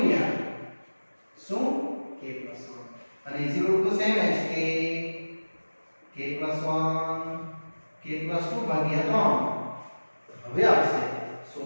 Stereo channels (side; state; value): both; inverted; correlation -1.00